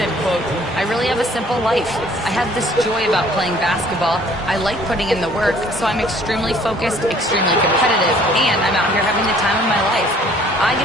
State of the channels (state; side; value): normal; both; correlation 0.57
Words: quote, "I really have a simple life. I have this joy about playing basketball. I like putting in the work, so I'm extremely focused, extremely competitive, and I'm out here having the time of my life. I